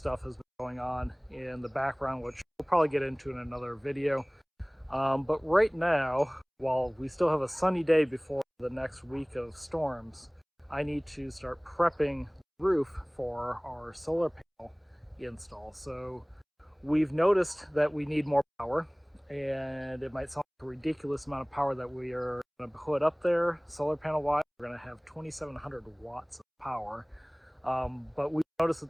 has been going on in the background, which we'll probably get into in another video. But right now, while we still have a sunny day before the next week of storms, I need to start prepping the roof for our solar panel install. So we've noticed that we need more power, and it might sound like a ridiculous amount of power that we are going to put up there solar panel wise. We're going to have 2,700 watts of power, but we noticed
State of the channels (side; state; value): both; identical; correlation 1.00